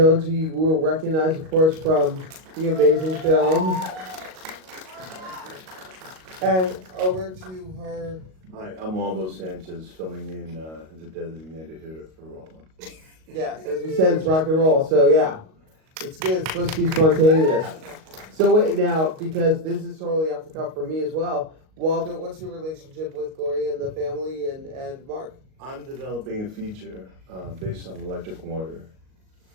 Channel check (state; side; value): late; left; 38 ms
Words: who you will recognize, of course, from the amazing film. And over to her. Hi, I'm Waldo Sanchez, filling in as a designated hitter for Bolan. Yes, as we said, it's rock and roll, so yeah. It's good, it's supposed to be spontaneous. So wait, now, because this is totally off the cuff for me as well, Waldo, what's your relationship with Gloria and the family and Marc? I'm developing a feature based on Electric Warrior.